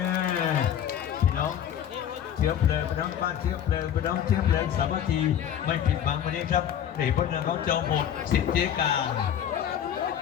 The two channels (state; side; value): quieter; right; 9.8 dB